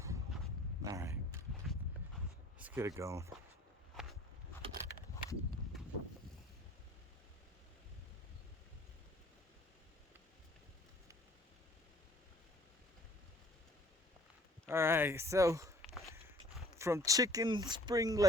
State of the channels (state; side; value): normal; both; correlation 0.54